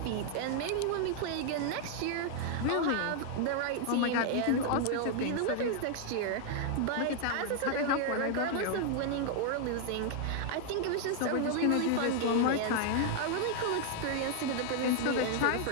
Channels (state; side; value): different; both; correlation 0.00